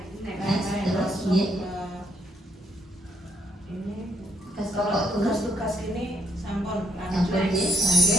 terus tugas ini sampun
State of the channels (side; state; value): both; normal; correlation 0.71